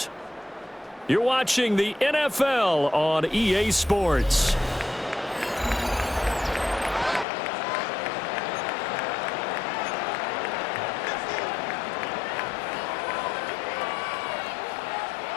You're watching the NFL on EA Sports.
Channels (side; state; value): right; drops out; at 7.2 s